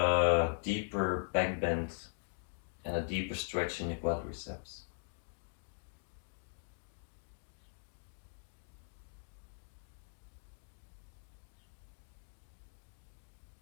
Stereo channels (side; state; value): right; silent; digital silence